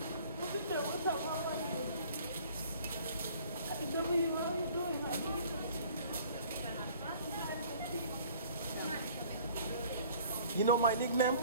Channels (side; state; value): both; inverted; correlation -0.52